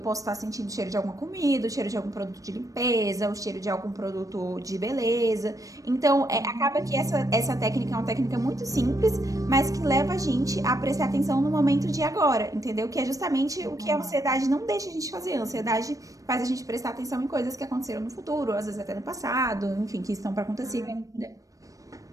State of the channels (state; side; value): late; left; 0.16 ms